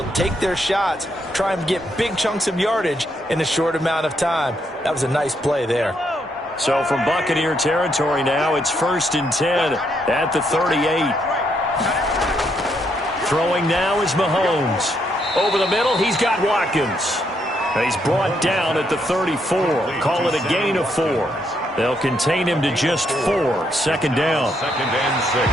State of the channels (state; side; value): normal; both; correlation 0.76